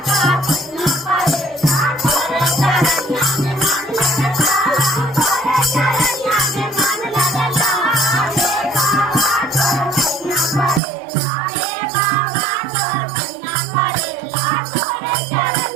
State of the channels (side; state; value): left; drops out; at 10.8 s